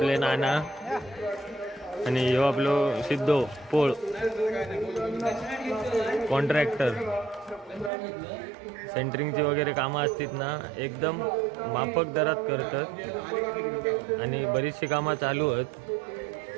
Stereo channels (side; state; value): left; drops out; at 7.9 s